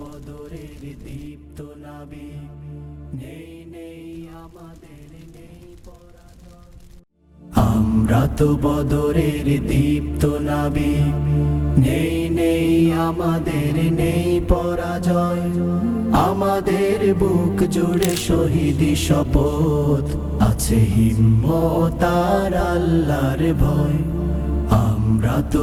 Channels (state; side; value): identical; both; correlation 1.00